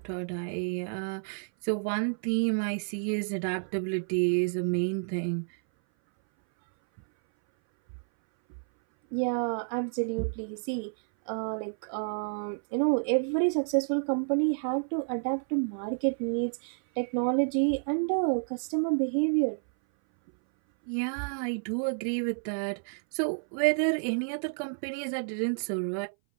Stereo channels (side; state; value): left; silent; 58 dB below the other